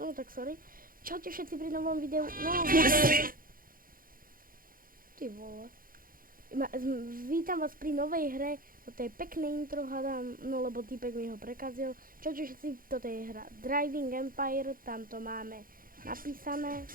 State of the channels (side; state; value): left; late; 0.41 ms